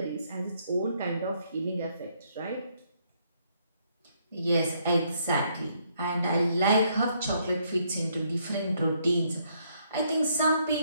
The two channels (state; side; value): inverted; both; correlation -0.71